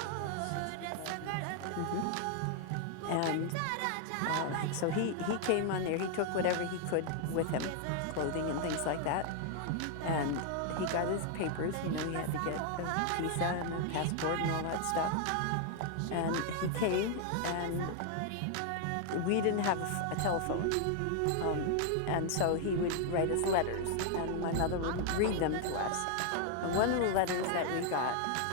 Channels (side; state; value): both; different; correlation 0.00